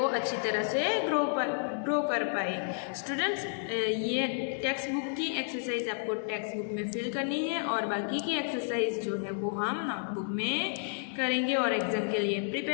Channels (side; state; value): right; silent; digital silence